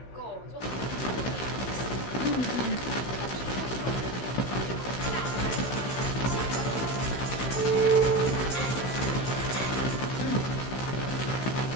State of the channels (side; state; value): right; late; 16 ms